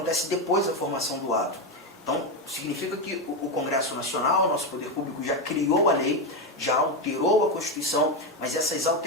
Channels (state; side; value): normal; both; correlation 0.10